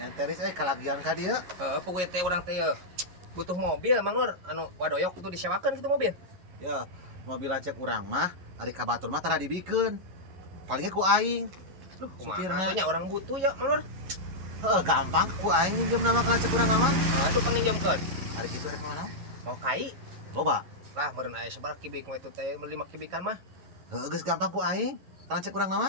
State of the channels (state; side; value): late; left; 11 ms